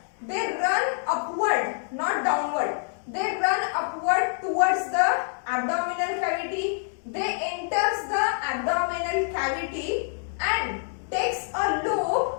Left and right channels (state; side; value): silent; right; digital silence